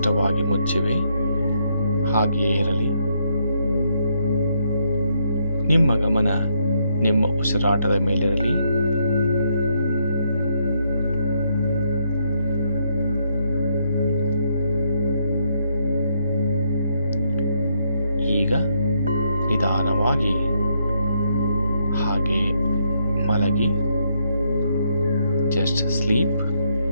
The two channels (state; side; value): inverted; both; correlation -0.75